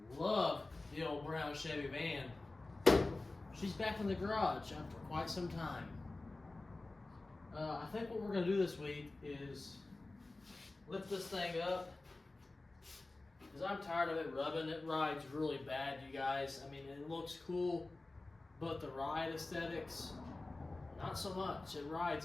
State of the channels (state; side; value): quieter; right; 3.1 dB